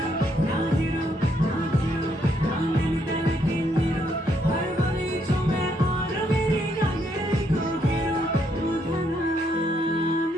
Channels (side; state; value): both; normal; correlation 0.73